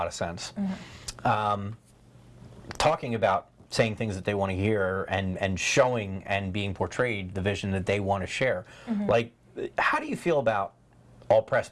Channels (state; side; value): identical; both; correlation 1.00